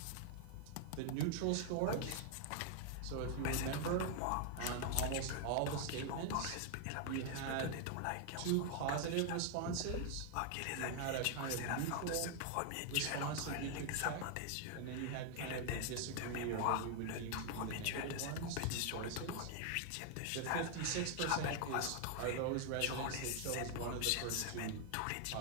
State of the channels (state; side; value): different; both; correlation 0.00